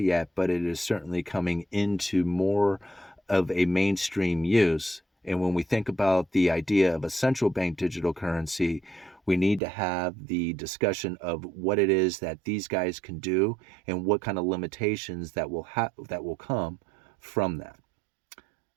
but it is certainly coming into more of a mainstream use. And when we think about the idea of a central bank digital currency, we need to have the discussion of what it is that these guys can do and what kind of limitations that will come from that.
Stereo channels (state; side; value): drops out; left; at 9.6 s